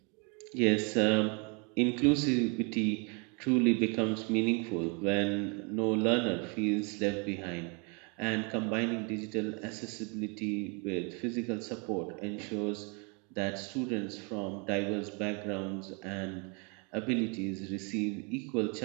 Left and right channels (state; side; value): quieter; left; 33.4 dB